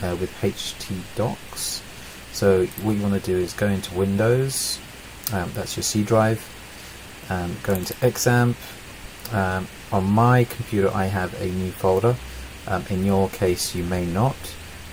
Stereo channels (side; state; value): both; identical; correlation 1.00